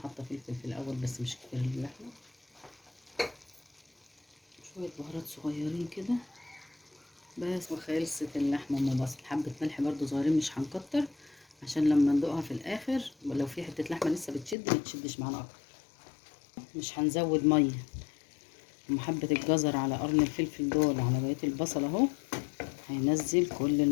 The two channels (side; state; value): right; drops out; at 14.6 s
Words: فلفل في الاول بس مش كتير للحمه. شويه بهارات صغيرين كده بس، وخلصت اللحمه ام بصل. حبه ملح برضو صغيرين مش هنكتر، عشان لما ندوقها في الاخر لو في حته لحمه لسه بتشد ما تشدش معانا اكتر. مش هنزود ميه. ومحبه الجزر على قرن الفلفل دول على بقيه البصل اهو، هينزل كل